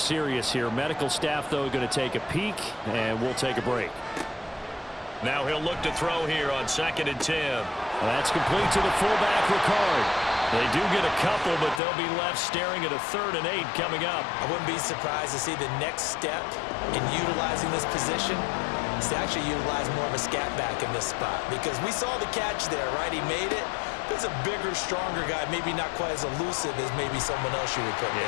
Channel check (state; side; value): drops out; right; at 11.8 s